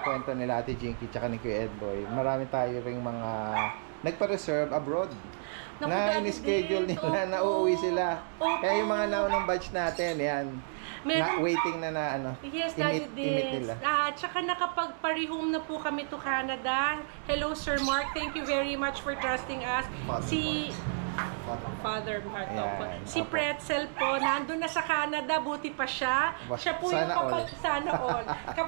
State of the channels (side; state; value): left; silent; digital silence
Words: kwento nila Ate Jinky tsaka ni Kuya Edboy. Marami tayo ring mga nagpa-reserve abroad. Naku, Na Daddy in-schedule Dens, nila na opo. uuwi sila. Opo. Kaya yung mga naunang batch natin, yan. Meron- waiting na ano. Yes, Daddy imit Dens. nila. Tsaka nakapag-parehome na po kami to Canada. Hello, Sir Mark. Thank you very much for trusting us. Father Mark. Ayan, Opo. Si opo. Pretzel po, nandun na sa Canada, buti pa siya. Siya po yung Sana all. sana all.